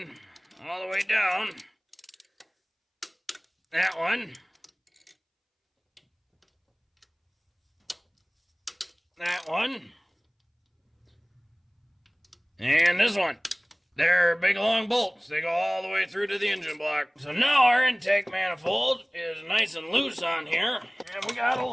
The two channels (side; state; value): both; identical; correlation 1.00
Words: all the way down. That one. That one. And this one. They're big long bolts. They go all the way through to the engine block. So now our intake manifold is nice and loose on here. And we got a